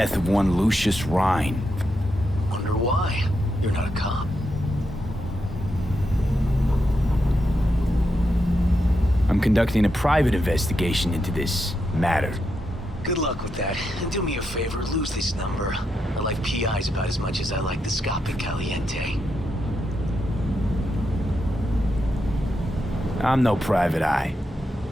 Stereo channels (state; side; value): normal; both; correlation 0.84